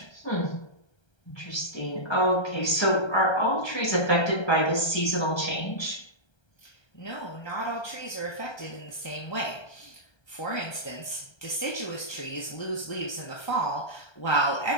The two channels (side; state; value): right; late; 1.3 ms